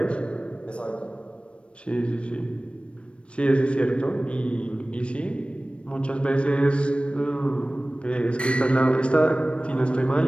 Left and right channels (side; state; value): right; late; 0.059 ms